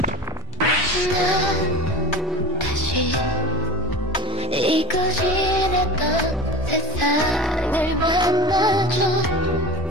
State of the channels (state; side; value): normal; both; correlation 0.29